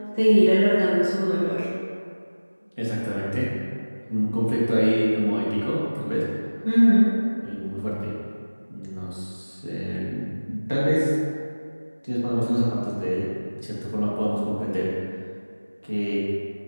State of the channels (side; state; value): both; inverted; correlation -1.00